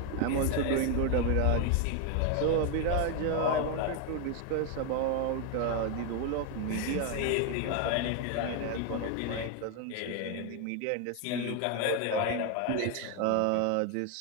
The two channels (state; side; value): different; both; correlation 0.01